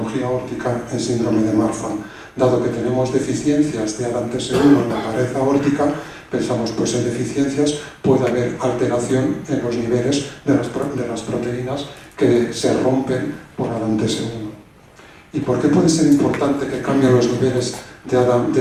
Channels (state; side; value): identical; both; correlation 1.00